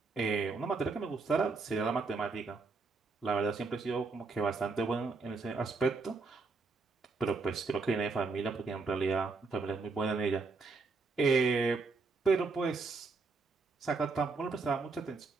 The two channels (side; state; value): left; quieter; 4.1 dB